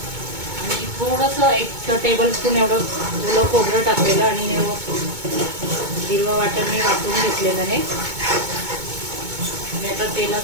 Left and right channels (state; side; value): late; left; 2.2 ms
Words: आणि थोडंसं 1 टेबलस्पून एवढं ओलं खोबरं टाकलेलं आणि हिरवं वाटण मी वाटून घेतलेलं आहे. आणि आता